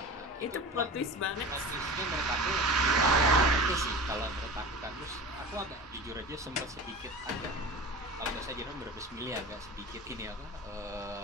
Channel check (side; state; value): both; normal; correlation 0.33